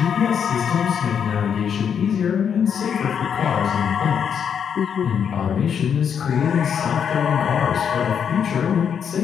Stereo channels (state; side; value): quieter; right; 7.6 dB